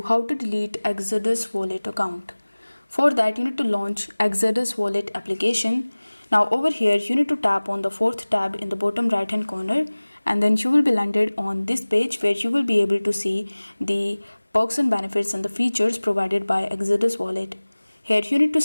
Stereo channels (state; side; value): inverted; both; correlation -1.00